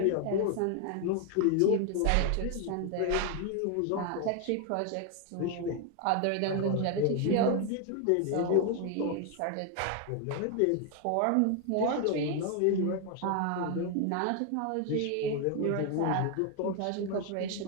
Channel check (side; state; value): both; different; correlation 0.01